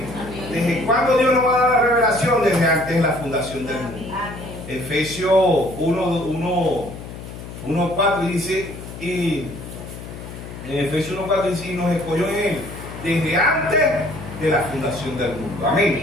¿Desde cuándo Dios nos va a dar la revelación? Desde antes de la fundación del mundo. Efesios 1:4 dice, y en Efesios 1:4 dice, y nos escogió en él desde antes de la fundación del mundo.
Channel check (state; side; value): noise; left; hum, 12 dB below the sound